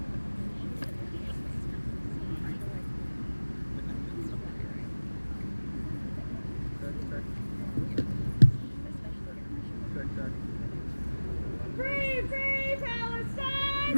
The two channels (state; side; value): inverted; both; correlation -1.00